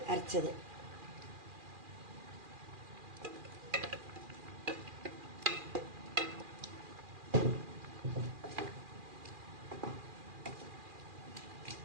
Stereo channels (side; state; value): left; late; 2.4 ms